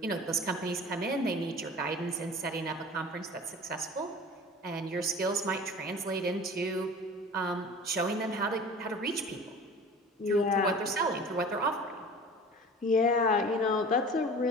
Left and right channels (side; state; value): both; normal; correlation 0.41